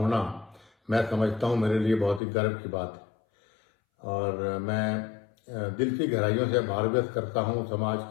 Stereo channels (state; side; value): drops out; right; at 2.2 s